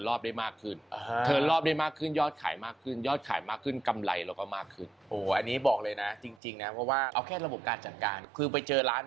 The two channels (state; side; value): drops out; left; at 6.4 s